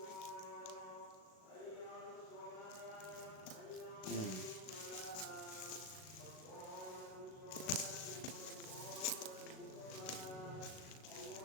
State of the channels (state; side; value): late; right; 38 ms